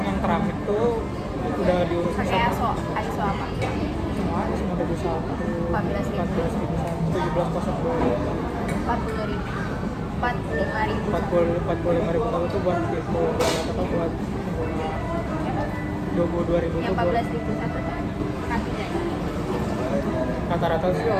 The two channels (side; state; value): both; identical; correlation 1.00